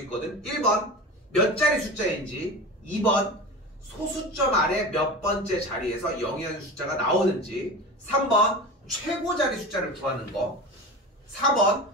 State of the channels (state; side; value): normal; both; correlation 0.30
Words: 1번 몇 자리 숫자인지, 2번 소수점 아래 몇 번째 자리에서 0이라는 숫자가 나오는지, 3번 최고 자리 숫자를 구하는 거, 4번